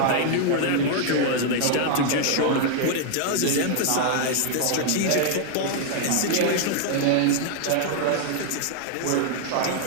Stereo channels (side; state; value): both; different; correlation 0.00